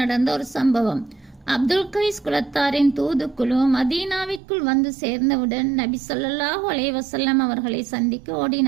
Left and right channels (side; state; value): left; drops out; at 4.4 s